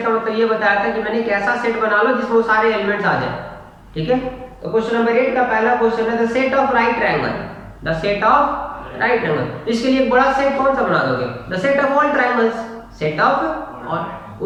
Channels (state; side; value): identical; both; correlation 1.00